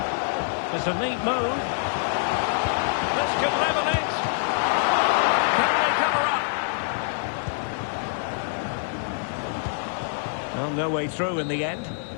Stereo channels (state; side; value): silent; right; 60 dB below the other